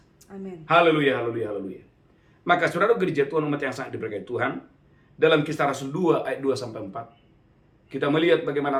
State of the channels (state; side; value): identical; both; correlation 1.00